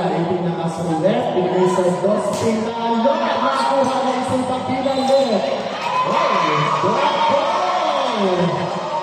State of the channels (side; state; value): both; identical; correlation 1.00